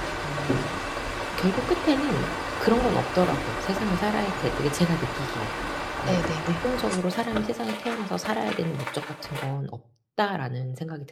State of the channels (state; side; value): identical; both; correlation 1.00